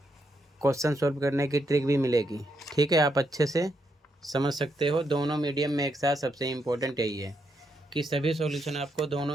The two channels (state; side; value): normal; both; correlation 0.79